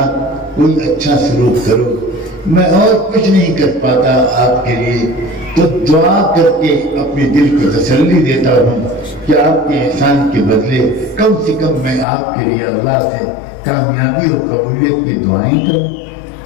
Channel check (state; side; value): drops out; right; at 12.1 s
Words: کوئی اچھا سلوک کرو۔ میں اور کچھ نہیں کر پاتا آپ کے لیے، تو دعا کر کے اپنے دل کو تسلی دیتا ہوں کہ آپ کے احسان کے بدلے کم سے کم میں آپ کے لیے اللہ سے کامیابی اور قبولیت کی دعائیں کروں۔